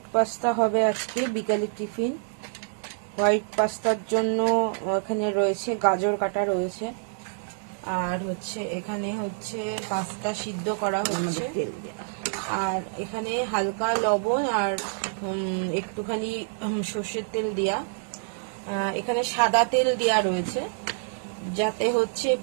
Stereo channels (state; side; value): silent; left; digital silence